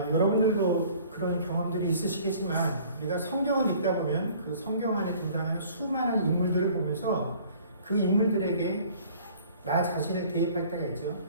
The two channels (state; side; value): inverted; both; correlation -0.52